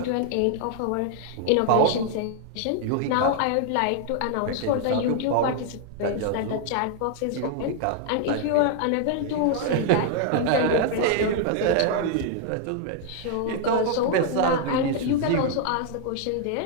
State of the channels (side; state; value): both; different; correlation 0.00